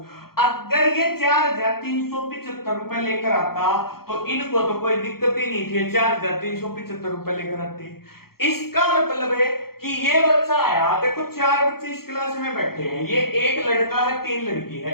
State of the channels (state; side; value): late; right; 0.94 ms